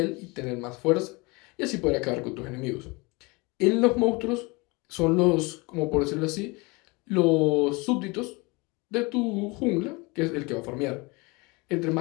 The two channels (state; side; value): quieter; right; 26.2 dB